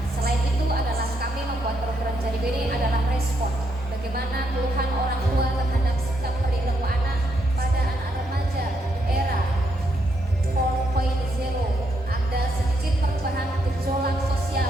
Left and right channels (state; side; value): normal; both; correlation 0.77